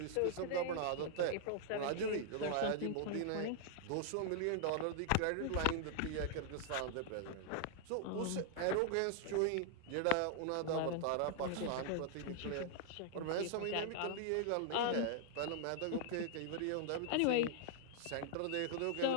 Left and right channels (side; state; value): both; different; correlation -0.01